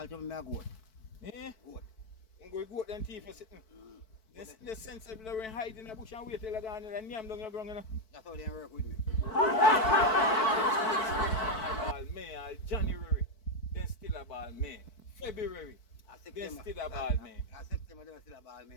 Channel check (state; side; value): late; right; 4.6 ms